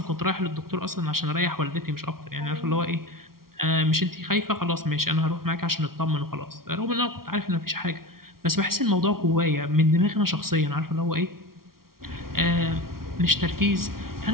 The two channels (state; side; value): late; left; 0.93 ms